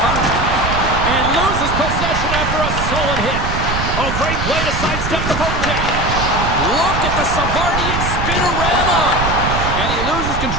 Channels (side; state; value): right; noise; rumble, 3 dB below the sound